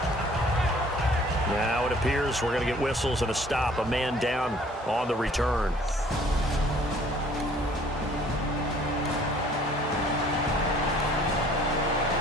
Now it appears we're going to get whistles and a stop. A man down on the return.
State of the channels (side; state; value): both; normal; correlation 0.56